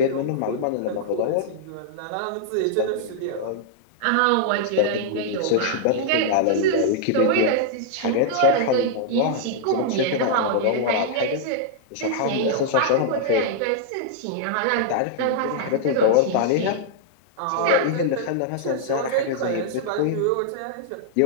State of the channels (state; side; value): different; both; correlation -0.01